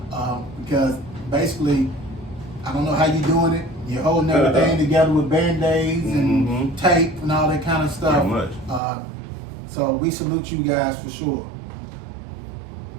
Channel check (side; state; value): left; drops out; at 8.8 s